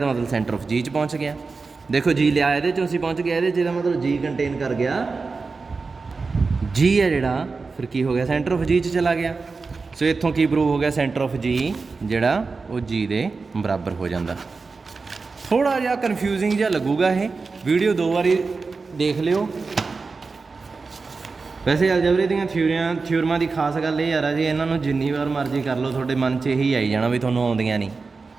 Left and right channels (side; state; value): left; quieter; 4.3 dB